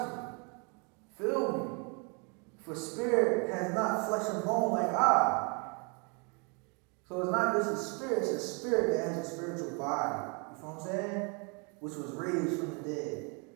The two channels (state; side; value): quieter; left; 34.7 dB